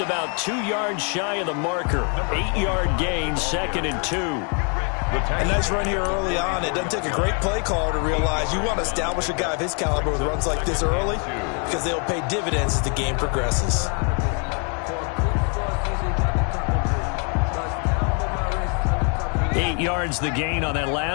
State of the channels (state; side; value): quieter; right; 38.4 dB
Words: about 2 yards shy of the marker. 8-yard gain, second and 2. A nice run here early on. It doesn't take a great play caller to realize you want to establish a guy of his caliber with runs like this early because they'll pay dividends as the game progresses. Eight yards the gain on that